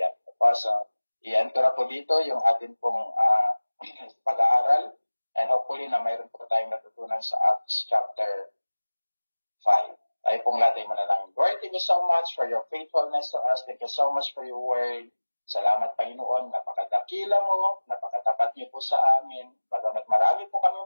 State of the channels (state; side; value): inverted; both; correlation -1.00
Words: So, i-end ko na po dito yung ating pong pag-aaral and hopefully na mayroon po tayong natutunan sa Acts chapter 5. Tayo pong lahat ay manalangin. Lord, thank you so much for your faithfulness to us. Thank you so much for your word. Salamat, Panginoon. Napakadakila mo, napakatapat niyo po sa amin. Bagamat marami po kami